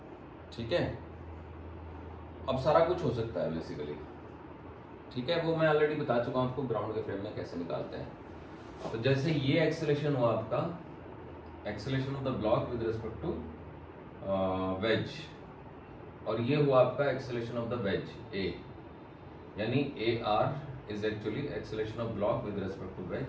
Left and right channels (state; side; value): identical; both; correlation 1.00